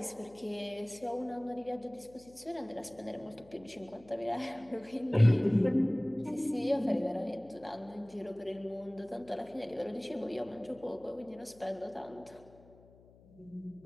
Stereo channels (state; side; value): noise; left; hum, 25 dB below the sound